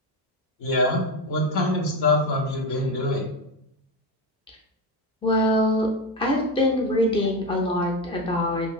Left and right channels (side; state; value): both; normal; correlation 0.15